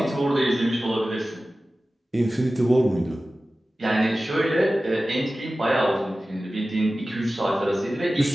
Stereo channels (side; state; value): both; normal; correlation 0.96